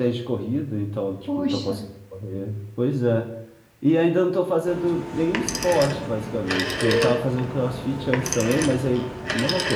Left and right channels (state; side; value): identical; both; correlation 1.00